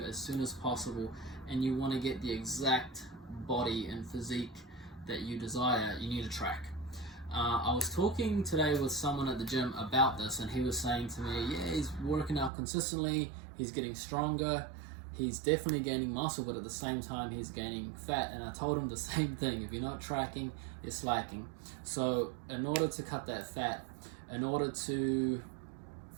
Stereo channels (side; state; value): left; drops out; at 12.5 s